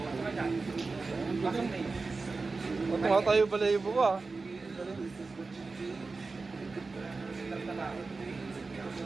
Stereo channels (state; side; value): quieter; left; 4.0 dB